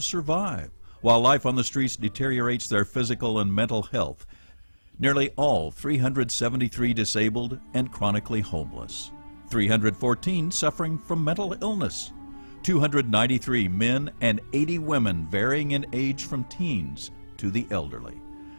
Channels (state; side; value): inverted; both; correlation -1.00